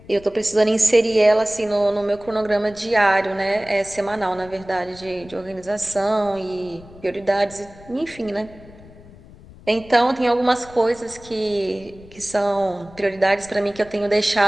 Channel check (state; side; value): noise; left; rumble, 21 dB below the sound